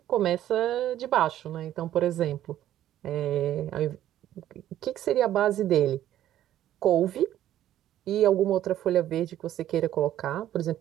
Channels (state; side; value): quieter; left; 12.4 dB